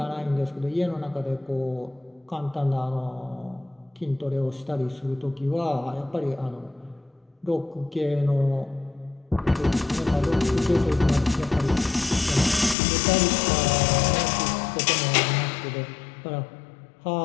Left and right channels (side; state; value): right; drops out; at 12.8 s